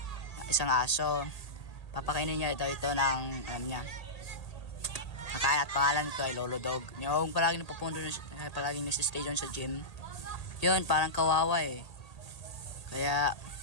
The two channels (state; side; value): late; right; 1.8 ms